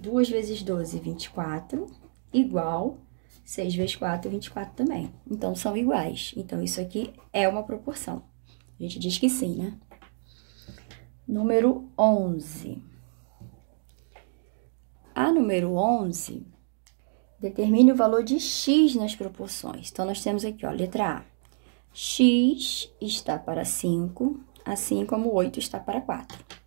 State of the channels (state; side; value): silent; left; digital silence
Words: vezes 12, 24, igual 6 vezes 4, 24 também. Então, são iguais. Então, isso aqui é uma proporção. A gente diz que sim, né? Número 11. A número 11 determine o valor de x nas proporções. Então, nós temos aqui, ó, letra A. X está para 5, assim como 8 está para 4.